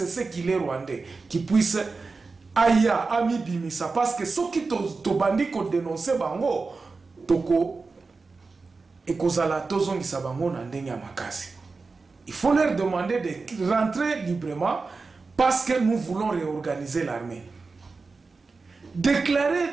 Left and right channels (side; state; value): left; quieter; 4.2 dB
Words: qu'il est rwandais, qui puisse aya ami bimisa. Parce que ceux qui t'ont bandit qu'on dénonce bango, toko. Et il faut leur demander de rentrer librement parce que nous voulons réorganiser l'armée.